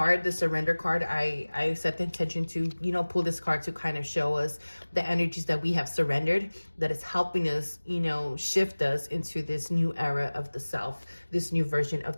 the surrender card, I set the intention to, you know, pull this card to kind of show us the energies that we have surrendered, that is helping us, you know, shift us into this new era of the self, this new version of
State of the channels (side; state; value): both; inverted; correlation -1.00